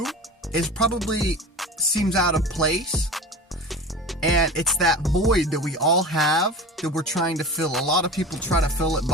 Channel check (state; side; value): normal; both; correlation 0.34